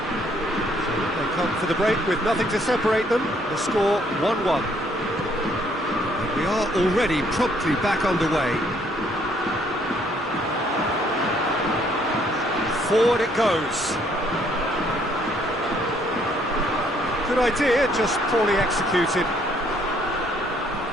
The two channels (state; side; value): noise; right; hum, 24 dB below the sound